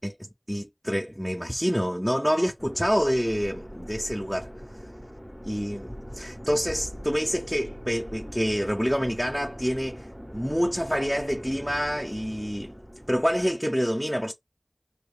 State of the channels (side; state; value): both; identical; correlation 1.00